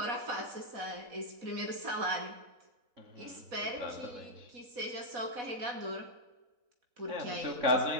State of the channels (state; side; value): late; left; 4.1 ms